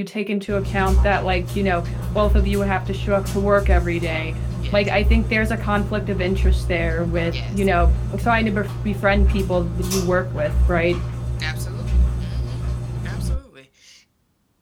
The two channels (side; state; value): both; identical; correlation 1.00